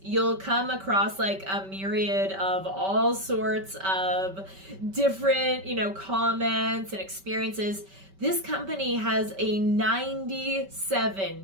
you'll come across like a myriad of all sorts of different, you know, comments and experiences. This company has a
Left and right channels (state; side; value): late; left; 5.2 ms